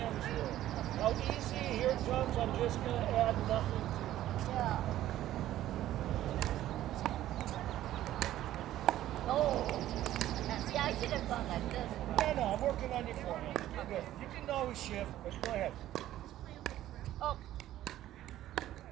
were, how easy, here it comes, I'm just going to add nothing to it. Yeah. Oh. See, I should have gone like this. No, I'm working on your forehand. You're good. You can always shift, but go ahead. Oh.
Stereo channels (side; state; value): left; quieter; 13.5 dB